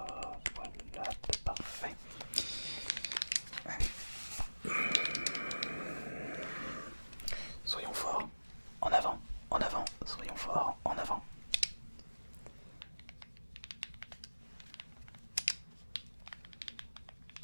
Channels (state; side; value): inverted; both; correlation -1.00